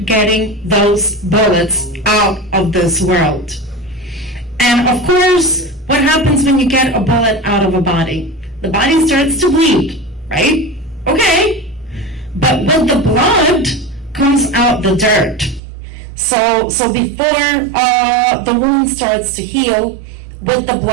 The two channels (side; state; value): left; drops out; at 15.6 s